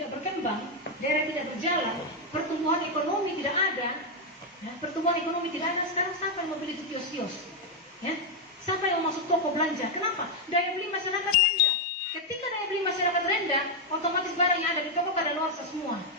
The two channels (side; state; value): both; normal; correlation 0.01